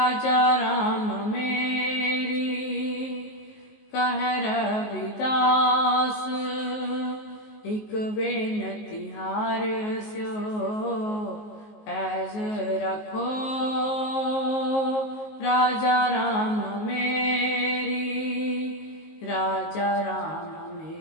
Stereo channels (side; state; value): right; late; 19 ms